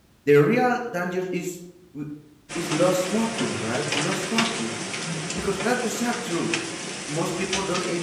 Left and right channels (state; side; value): identical; both; correlation 1.00